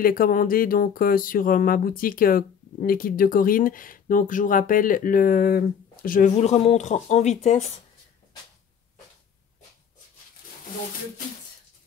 les commander donc sur ma boutique les kits de Corinne. Donc je vous rappelle je vous le remontre en vitesse. Donc le kit.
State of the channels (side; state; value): right; quieter; 7.6 dB